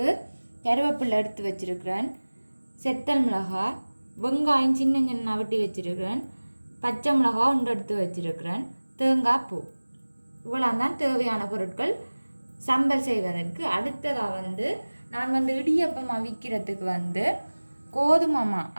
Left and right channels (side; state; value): both; inverted; correlation -1.00